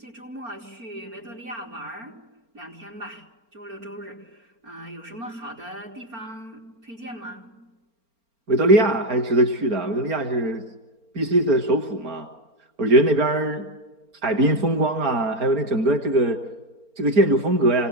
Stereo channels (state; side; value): late; left; 4.4 ms